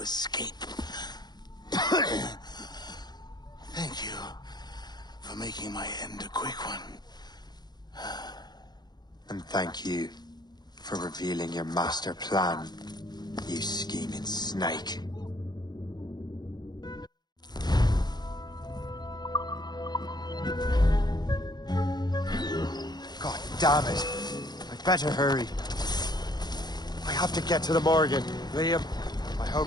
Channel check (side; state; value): right; late; 0.20 ms